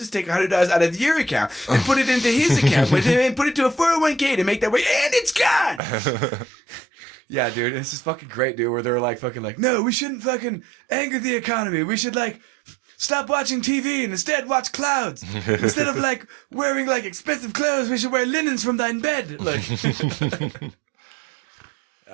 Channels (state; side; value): drops out; left; at 5.8 s